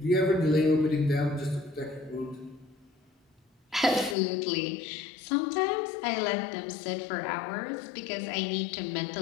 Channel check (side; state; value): right; drops out; at 4.2 s